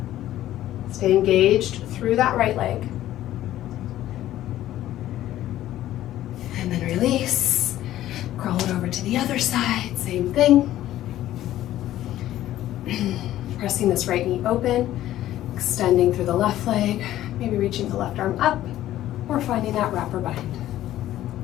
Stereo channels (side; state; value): right; quieter; 13.6 dB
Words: Stay engaged through that right leg. And then release. Crawl it over to the other side, same thing. Pressing this right knee open, extending through the left leg, maybe reaching the left arm up, or finding that wrap or bind.